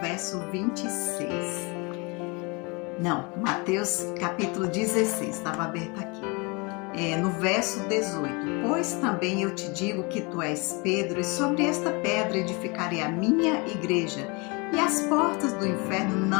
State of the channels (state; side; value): quieter; right; 29.0 dB